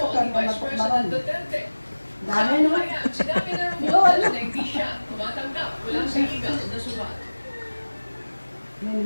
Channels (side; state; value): both; inverted; correlation -1.00